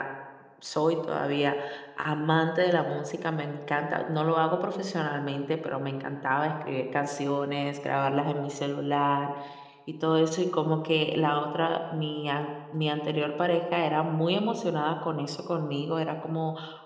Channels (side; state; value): both; identical; correlation 1.00